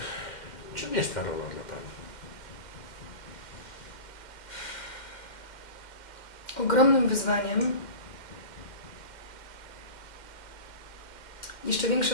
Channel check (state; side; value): late; right; 2.1 ms